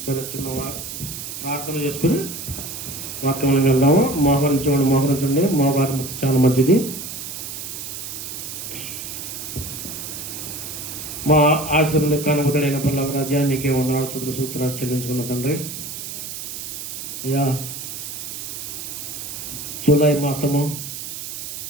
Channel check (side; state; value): right; noise; hiss, 8 dB below the sound